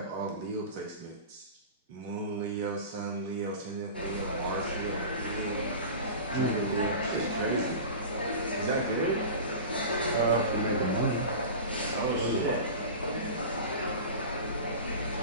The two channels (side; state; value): both; inverted; correlation -0.33